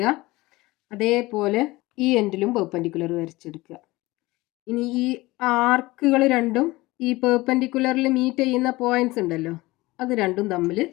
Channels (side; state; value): right; quieter; 20.4 dB